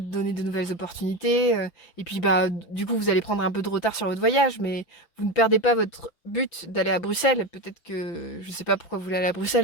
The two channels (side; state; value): right; late; 5.9 ms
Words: donner de nouvelles opportunités. Et puis bah du coup vous allez prendre un peu de retard sur votre voyage, mais vous ne perdez pas votre but d'aller à Bruxelles. Peut-être que je sais pas pourquoi vous voulez aller à